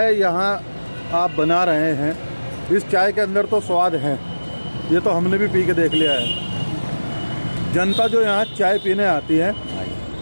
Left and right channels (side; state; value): both; inverted; correlation -1.00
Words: यहाँ आप बना रहे हैं, इस चाय के अंदर तो स्वाद है, ये तो हमने भी पी के देख लिया है। जनता जो यहाँ चाय पीने आती है,